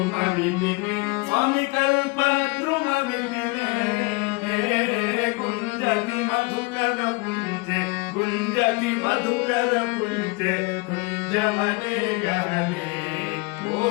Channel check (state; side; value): quieter; right; 27.1 dB